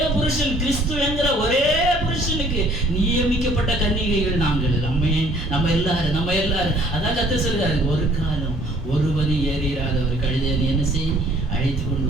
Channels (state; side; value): normal; both; correlation 0.58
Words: புருஷன், கிறிஸ்து என்கிற ஒரே புருஷனுக்கு நியமிக்கப்பட்ட கன்னிகைகள் நாங்கள். நம்ம எல்லாரும் அதான் கர்த்தர் சொல்றாரு, ஒரு காலம் ஒருவனி ஏறிராத ஒரு கழுதை நீ என்ன செய், அழைத்து கொண்டு